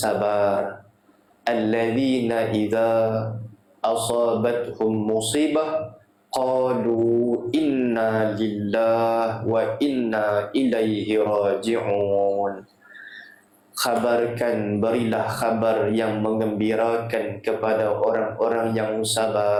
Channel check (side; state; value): both; identical; correlation 1.00